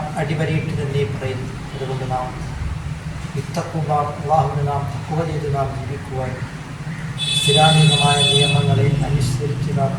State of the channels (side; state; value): both; identical; correlation 1.00